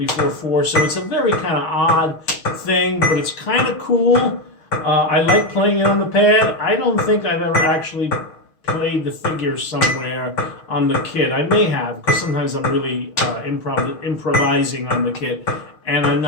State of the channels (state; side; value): late; right; 6.4 ms